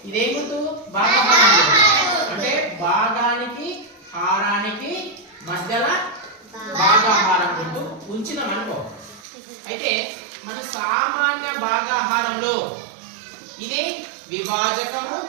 ఇదేం గుర్తు? భాగాహారం అంటే భాగానికి హారానికి మధ్యలో భాగాహారం గుర్తు ఉంచినాం అనుకో. అయితే మన సామాన్య భాగాహారంలో ఇది విభాజకము,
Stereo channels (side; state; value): left; drops out; at 9.2 s